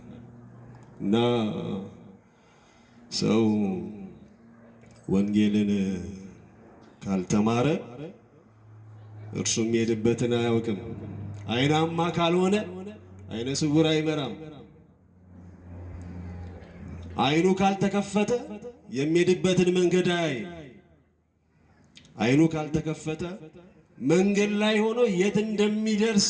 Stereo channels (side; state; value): both; identical; correlation 1.00